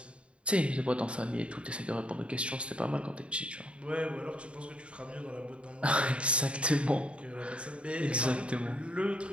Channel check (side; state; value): left; late; 0.058 ms